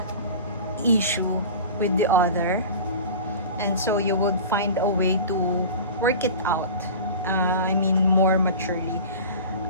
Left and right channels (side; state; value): both; inverted; correlation -0.36